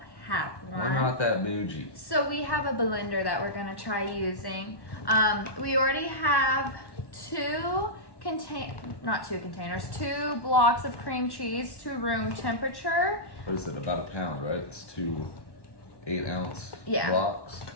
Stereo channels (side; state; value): right; late; 1.1 ms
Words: have one. We're not that bougie. So we have a blender that we're gonna try using. We already have two blocks of cream cheese to room temperature. What is it, about a pound, right? It's 2 8-ounce Yeah. blocks.